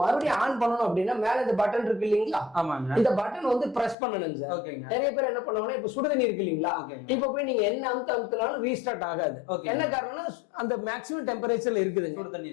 மறுபடியும் ஆன் பண்ணனும் அப்படின்னா மேல இந்த பட்டன் இருக்கு இல்லீங்களா, இந்த பட்டன் வந்து பிரஸ் பண்ணனுங்க சார். நிறைய பேர் என்ன பண்ணுவாங்கன்னா இப்ப சுடு தண்ணி இருக்கு இல்லீங்களா, இப்ப போய் நீங்க என்ன அமுத்தினாலும் ரீஸ்டார்ட் ஆகாது. என்ன காரணம்னா அந்த மேக்ஸிமம் டெம்பரேச்சர்ல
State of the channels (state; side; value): drops out; right; at 4.0 s